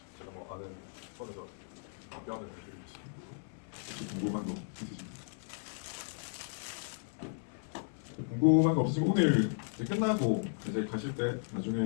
제가 뭐 아는 선에서 답변을 드리겠습니다. 궁금한 거 있으십니까? 궁금한 거 없으시고 오늘 이제 끝나고 이제 가실 때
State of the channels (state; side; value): silent; right; 54 dB below the other